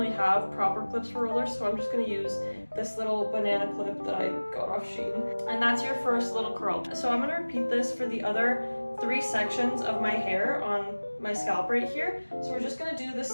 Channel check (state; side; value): inverted; both; correlation -1.00